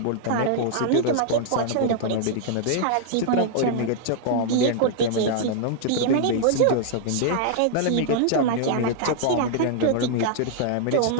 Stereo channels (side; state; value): both; different; correlation -0.01